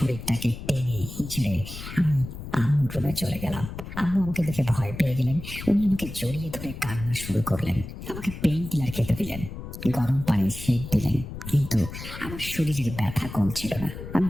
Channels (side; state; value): left; noise; rumble, 10 dB below the sound